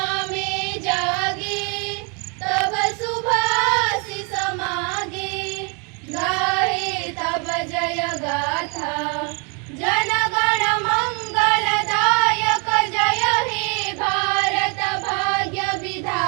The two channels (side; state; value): left; quieter; 35.5 dB